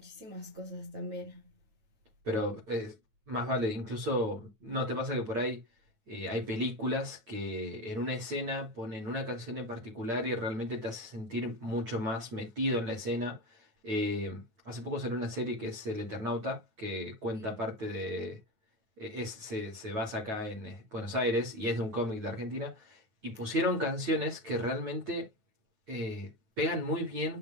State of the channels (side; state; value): left; late; 9.3 ms